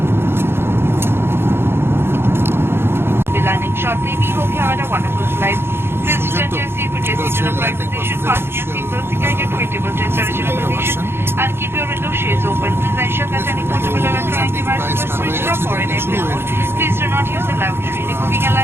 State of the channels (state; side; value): late; left; 0.11 ms